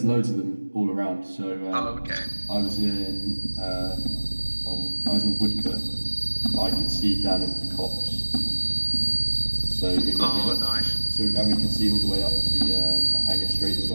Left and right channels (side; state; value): both; inverted; correlation -1.00